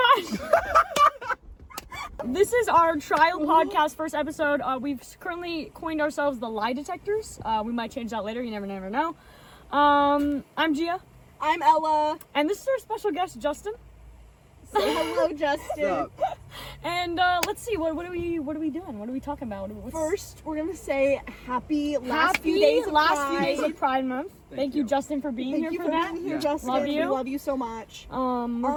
This is our trial podcast first episode. We've currently coined ourselves the Lie Detectors. We might change that later. You never know. I'm Gia. I'm Ella. And this is our special guest, Justin. Say hello, Justin. And let's see, what are we doing? What are we talking about? First, we're gonna say happy last few days of Pride Month. Thank you, Justin, for being here for that. Thank you for being here, Justin. Love you. We love you so much.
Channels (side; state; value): both; identical; correlation 1.00